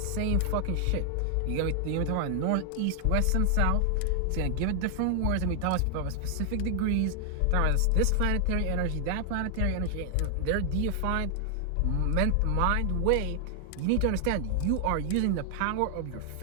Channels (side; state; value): both; different; correlation 0.00